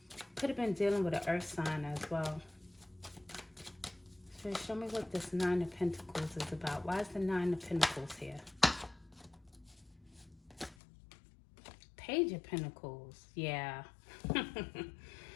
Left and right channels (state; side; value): drops out; right; at 10.8 s